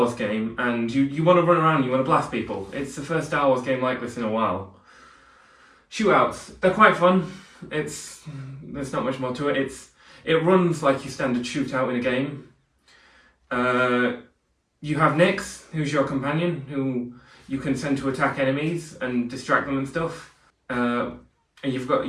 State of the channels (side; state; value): both; identical; correlation 1.00